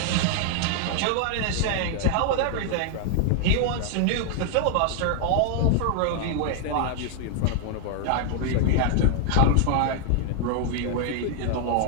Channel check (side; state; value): both; different; correlation 0.00